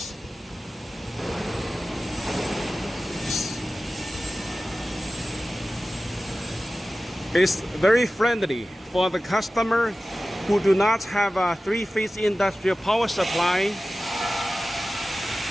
It's very friendly for the customer who do not have a 3-phase industrial power supply.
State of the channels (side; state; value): both; normal; correlation 0.96